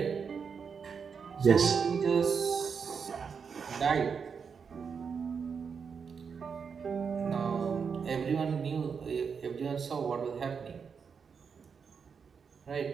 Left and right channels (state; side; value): quieter; left; 6.1 dB